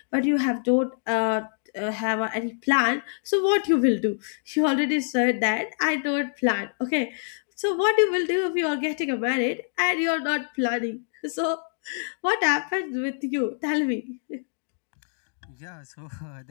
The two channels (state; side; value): silent; right; digital silence